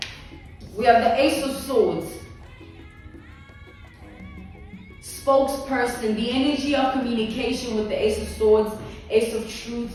We have the Ace of Swords. Spokesperson, the energy of communication with the Ace of Swords, Ace of Truth,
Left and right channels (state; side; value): identical; both; correlation 1.00